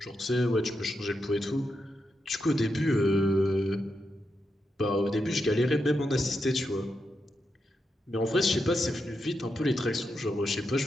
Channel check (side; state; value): both; normal; correlation 0.85